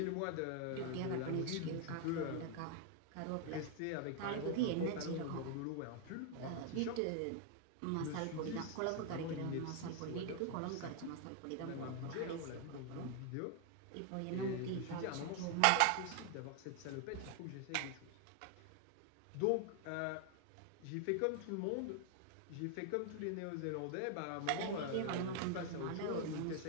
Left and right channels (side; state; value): both; different; correlation 0.00